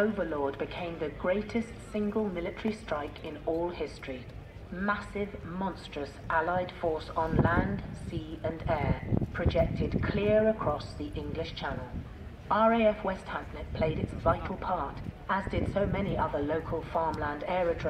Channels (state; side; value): identical; both; correlation 1.00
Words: became the greatest single military strike in all history. Massive, monstrous Allied force on land, sea and air, projected clear across the English Channel. RAF West Hampnet played its vital part, as did so many other local farmland